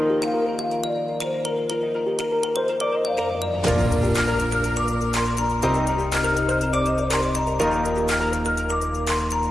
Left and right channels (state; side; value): normal; both; correlation 0.91